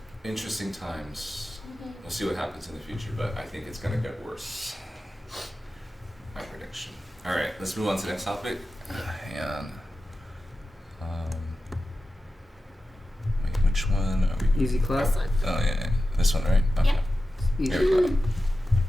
Interesting times. We'll see what happens in the future, but I think it's gonna get worse. My prediction. All right, let's move on to the next topic. And wait, which one are we? easy clap? This one. Oh yeah, this one, right? Okay. Yeah. Easy. Here we go.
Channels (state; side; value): normal; both; correlation 0.93